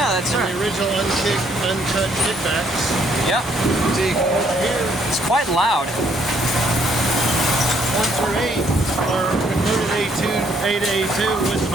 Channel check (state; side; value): normal; both; correlation 0.67